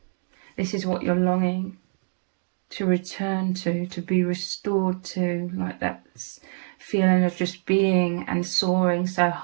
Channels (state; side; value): silent; left; digital silence